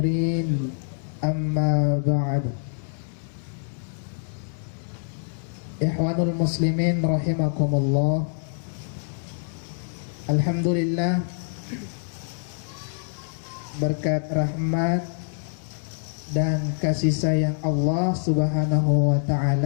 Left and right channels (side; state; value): right; silent; digital silence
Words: amma ba'd. Ikhwanul muslimin rahimakumullah. Alhamdulillah, berkat rahmat dan kasih sayang Allah Subhanahu wa